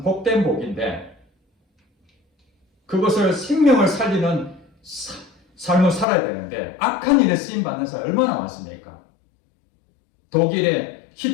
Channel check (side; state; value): right; drops out; at 6.1 s